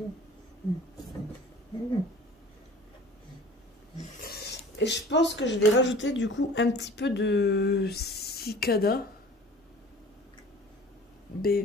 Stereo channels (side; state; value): both; normal; correlation 0.45